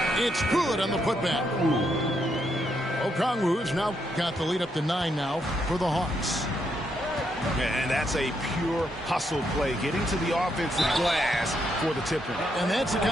It's good on the putback. Okongwu's now got the lead up to 9 now for the Hawks. And that's a pure hustle play, getting to the offensive glass for the tip-in. And that's the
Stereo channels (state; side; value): normal; both; correlation 0.78